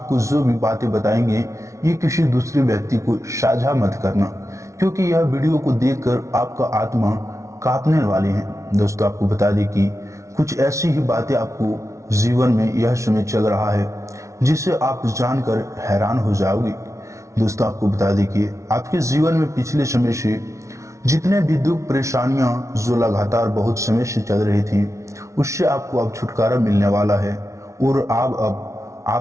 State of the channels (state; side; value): late; left; 0.14 ms